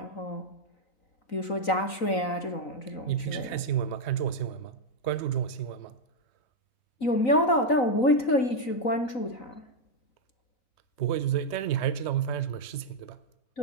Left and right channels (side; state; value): right; late; 3.9 ms